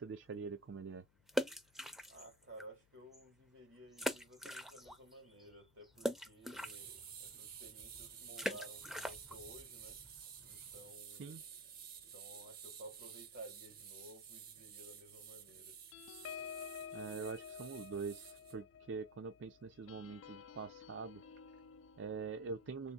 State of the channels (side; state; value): left; noise; hum, 28 dB below the sound